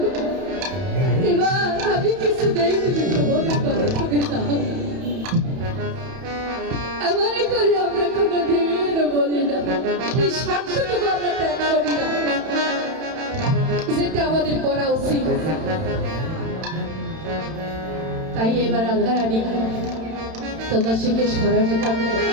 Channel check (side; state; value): left; late; 31 ms